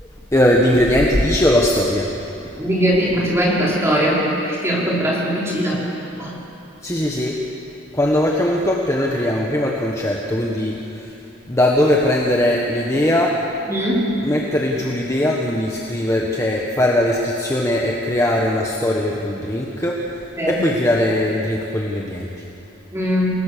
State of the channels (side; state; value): both; normal; correlation 0.63